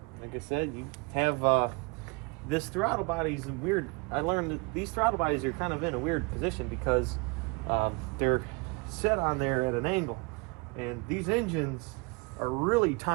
like I said, you have this throttle body's weird. I learned that these throttle bodies are kind of in a weird position because they're set on there at an angle, and these engines are really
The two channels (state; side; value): quieter; left; 29.3 dB